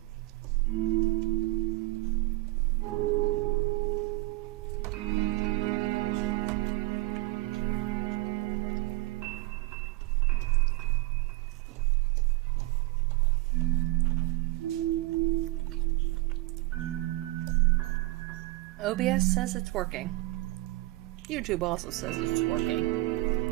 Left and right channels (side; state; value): left; quieter; 20.3 dB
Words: OBS says it's working. YouTube also says it's working.